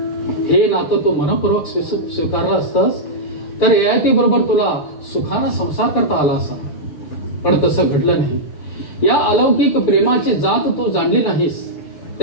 हे नातं तू मनपूर्वक स्वीकारलं असतंस तर ययातीबरोबर तुला सुखानं संसार करता आला असा, पण तसं घडलं नाही. या अलौकिक प्रेमाची जात तू जाणली नाहीस.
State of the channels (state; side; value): late; right; 6.9 ms